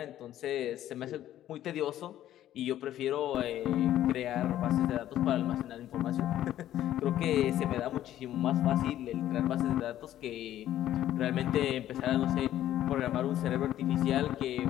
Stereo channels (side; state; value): right; quieter; 12.5 dB